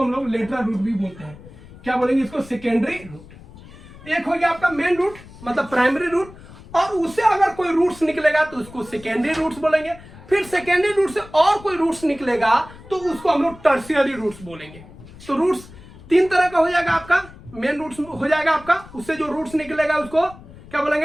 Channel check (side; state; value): left; noise; rumble, 19 dB below the sound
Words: हम लोग लेटरल रूट भी बोलते हैं। क्या बोलेंगे इसको, सेकेंडरी रूट। एक हो गया आपका मेन रूट मतलब प्राइमरी रूट, और उससे अगर कोई रूट्स निकलेगा तो उसको सेकेंडरी रूट्स बोलेंगे। फिर सेकेंडरी रूट से और कोई रूट्स निकलेगा तो उसको हम लोग टर्शियरी रूट्स बोलेंगे। तो रूट्स तीन तरह का हो जाएगा आपका, मेन रूट्स हो जाएगा आपका, उससे जो रूट्स निकलेगा उसको क्या